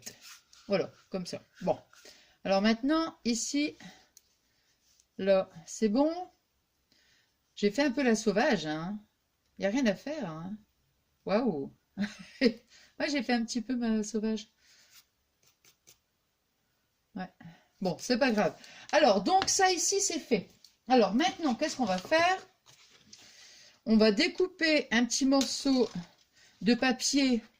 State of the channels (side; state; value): both; identical; correlation 1.00